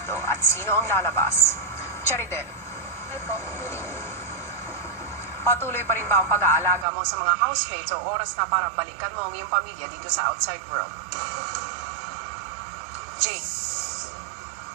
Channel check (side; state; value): left; drops out; at 6.9 s